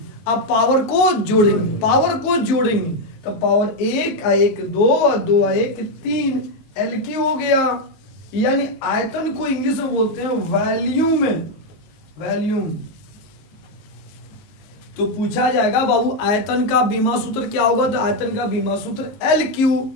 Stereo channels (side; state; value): right; late; 19 ms